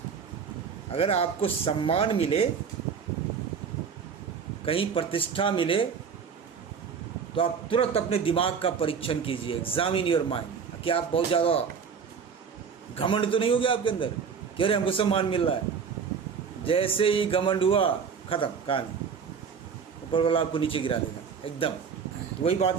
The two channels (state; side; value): quieter; left; 6.4 dB